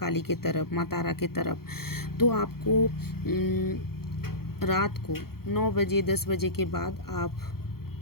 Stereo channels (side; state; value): right; late; 0.94 ms